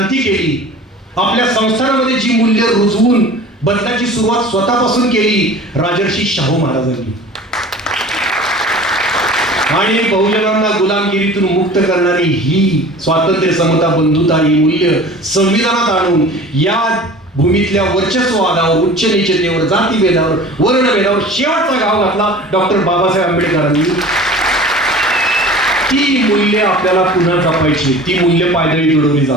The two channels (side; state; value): both; normal; correlation 0.42